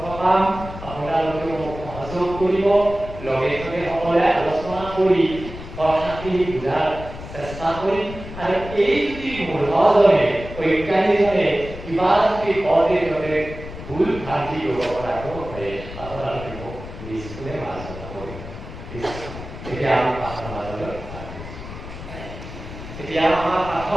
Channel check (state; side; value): noise; left; rumble, 12 dB below the sound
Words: পাম। আপোনালোকে মোক সহযোগ কৰিব, লগে লগে সকলোৱে আলোচনা কৰি কথাখিনি বুজাৰ চেষ্টা কৰিম। আৰু এই যদি মূঢ়জনে, অজ্ঞানীজনে কিবা যদি কওঁতে ততে ভুল ভ্ৰান্তি কৰিব পৰাটো হয়, আপোনালোকে মোক নিশ্চয় আলোচনা কৰিব। এতিয়া আমি পাঠৰ মাজলৈ এতিয়া আমাৰ পাঠত